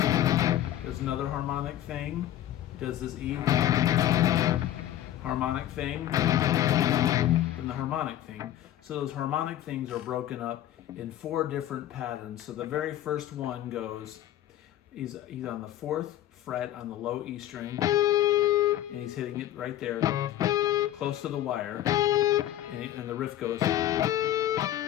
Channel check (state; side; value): quieter; right; 12.6 dB